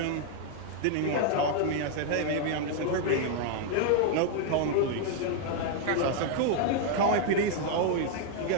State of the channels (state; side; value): different; both; correlation 0.00